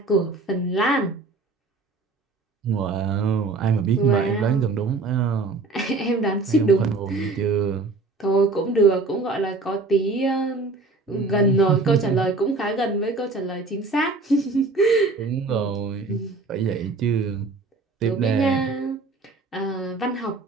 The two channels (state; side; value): quieter; left; 3.6 dB